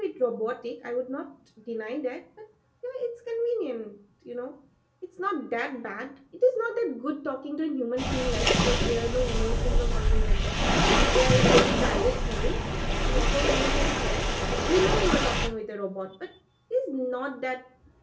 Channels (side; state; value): both; identical; correlation 1.00